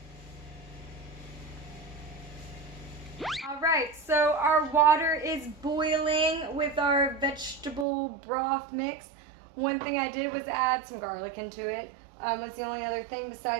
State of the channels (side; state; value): left; drops out; at 7.9 s